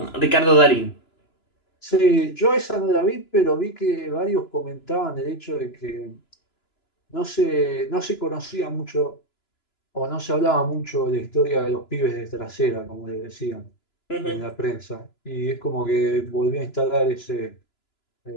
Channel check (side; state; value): right; late; 2.9 ms